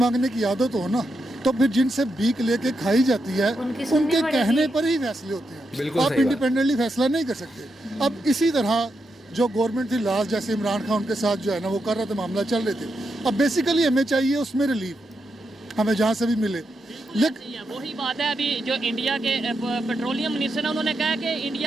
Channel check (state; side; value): normal; both; correlation 0.84